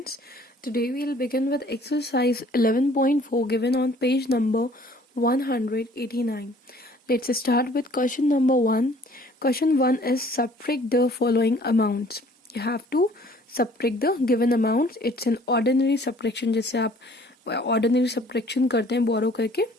Today we'll begin with exercise 11.4 given on page number 189. Let's start with question number 1. Question 1 is subtract the following amounts. You have to subtract the given amounts. It's an ordinary subtraction. जैसे आप ordinary subtraction करते हैं borrow करके.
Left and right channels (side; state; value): both; normal; correlation 0.55